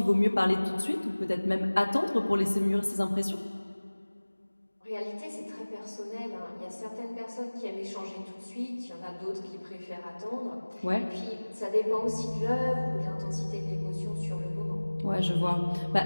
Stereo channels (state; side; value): inverted; both; correlation -1.00